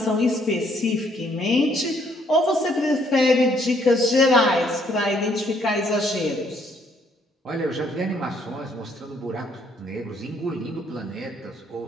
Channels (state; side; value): normal; both; correlation 0.67